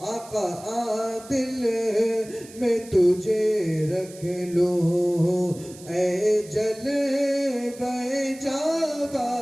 आका, आदिल में तुझे रख लो, ऐ जलवे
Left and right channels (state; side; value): noise; right; hiss, 19 dB below the sound